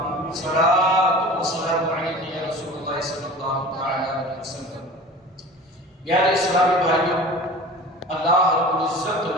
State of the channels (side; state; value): both; normal; correlation 0.39